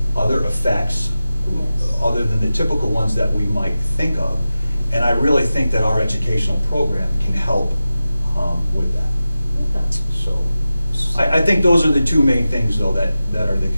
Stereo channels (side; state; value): both; inverted; correlation -0.94